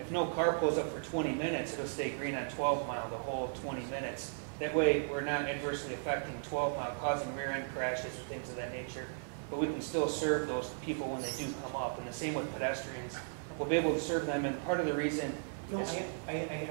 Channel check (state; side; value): silent; left; 54 dB below the other